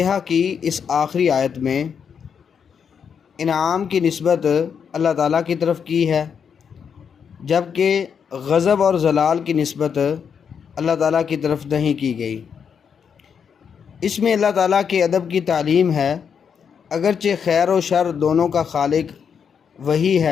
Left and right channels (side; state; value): right; quieter; 7.0 dB